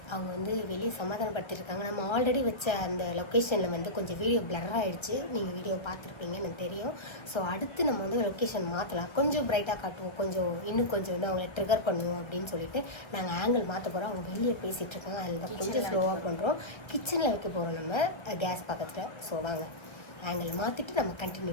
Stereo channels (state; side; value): late; right; 1.3 ms